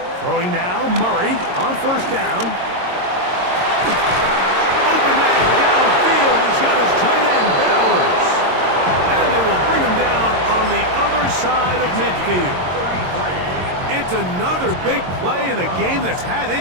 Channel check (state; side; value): late; left; 22 ms